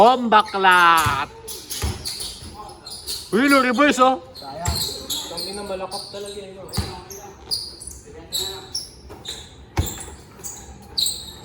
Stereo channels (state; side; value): identical; both; correlation 1.00